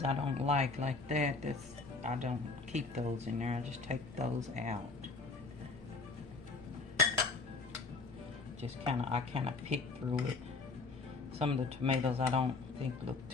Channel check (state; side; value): quieter; right; 4.0 dB